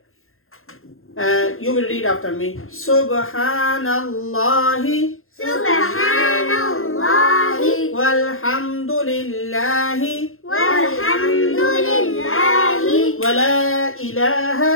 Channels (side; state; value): right; late; 0.61 ms